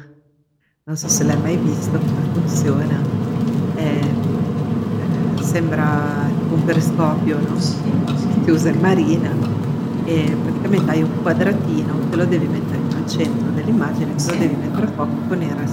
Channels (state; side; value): identical; both; correlation 1.00